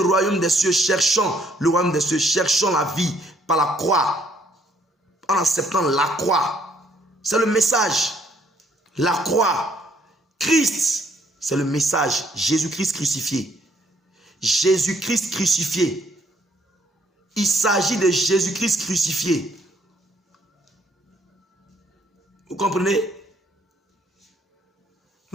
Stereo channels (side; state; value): both; normal; correlation 0.67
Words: royaume des cieux, cherchons le royaume des cieux, cherchons la vie par la croix. En acceptant la croix. C'est le message. La croix. Christ, c'est le message. Jésus-Christ crucifié. Jésus-Christ crucifié. Il s'agit de Jésus-Christ crucifié. Vous comprenez?